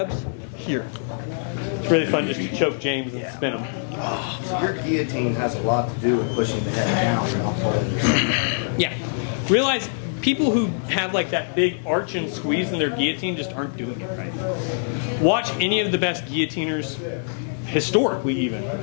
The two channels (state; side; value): silent; right; digital silence